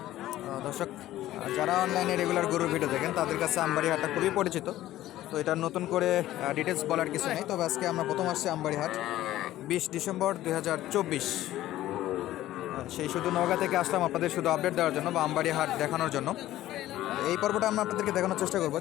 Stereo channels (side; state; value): right; quieter; 14.4 dB